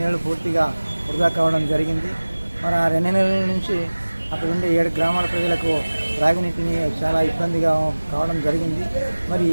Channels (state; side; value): inverted; both; correlation -1.00